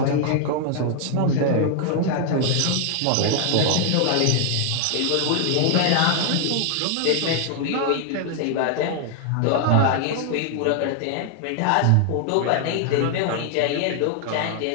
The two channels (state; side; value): different; both; correlation 0.00